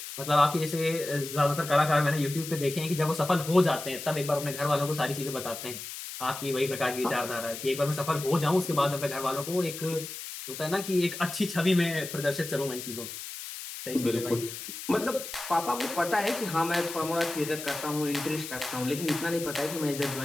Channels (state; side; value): noise; left; hiss, 9 dB below the sound